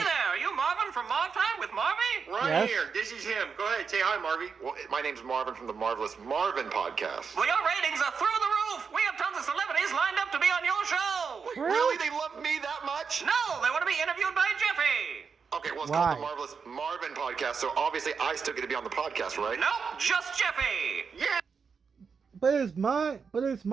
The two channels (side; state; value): left; quieter; 5.7 dB